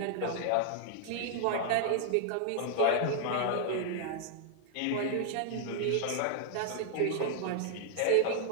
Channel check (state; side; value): different; both; correlation -0.01